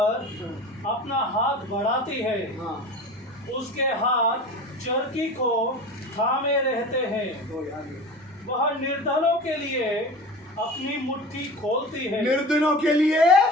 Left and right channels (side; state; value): both; normal; correlation 0.35